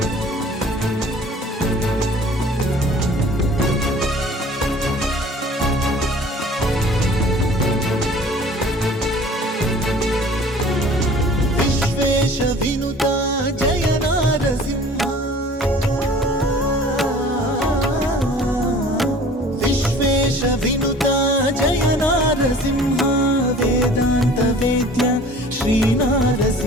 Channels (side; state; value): both; normal; correlation 0.47